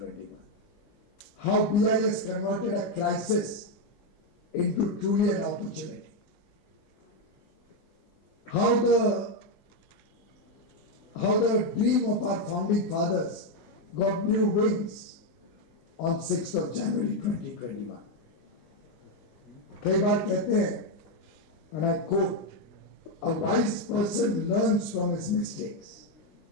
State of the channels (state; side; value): late; right; 19 ms